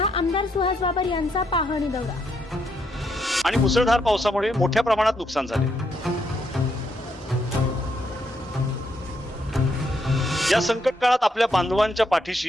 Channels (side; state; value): both; normal; correlation 0.76